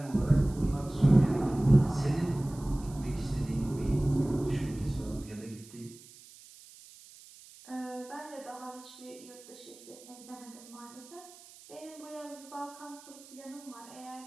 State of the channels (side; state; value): right; noise; hiss, 20 dB below the sound